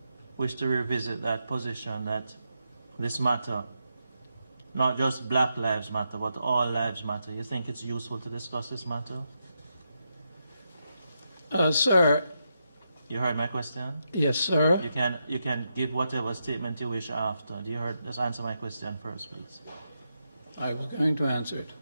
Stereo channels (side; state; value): both; inverted; correlation -0.84